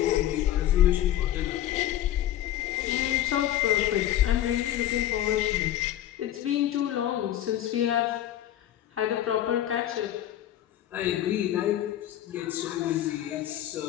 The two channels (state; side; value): quieter; right; 12.4 dB